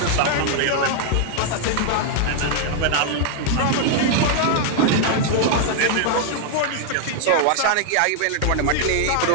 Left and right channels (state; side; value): different; both; correlation 0.00